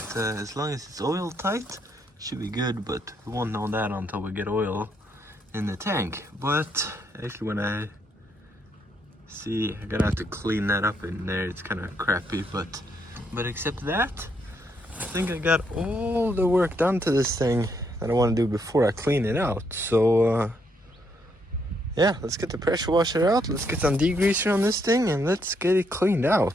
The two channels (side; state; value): both; normal; correlation 0.75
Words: as long as it's oil tight, it should be good, but we won't know that until we get oil in the tank. But actually when I see, I'm gonna have to clean that up in there, it's kind of crappy, but except that, I think I got all the work done to this thing that I want to do before I clean it out. So yeah, let's get the pressure washer out, let's get some degreaser on this thing, and let's get it cleaned